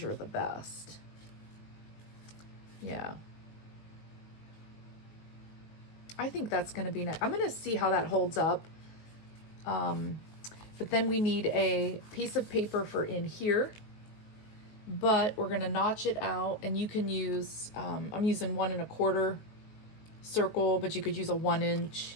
the best. Yeah. I think that's going to be nice. I'm going to see how that holds up. But then we need a piece of paper for in here. But we're going to notch it out. And you can use, I'm using 1 1/4 circle, but you could use a 1 inch.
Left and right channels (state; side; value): late; right; 19 ms